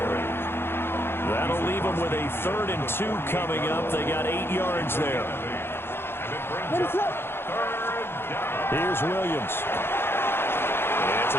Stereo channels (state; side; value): late; right; 0.11 ms